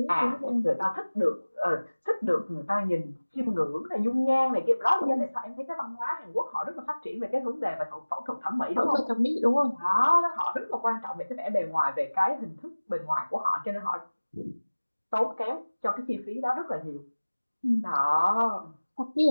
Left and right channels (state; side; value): inverted; both; correlation -1.00